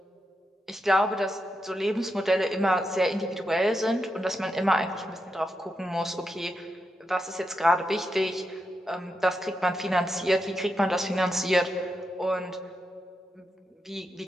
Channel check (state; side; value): normal; both; correlation 0.86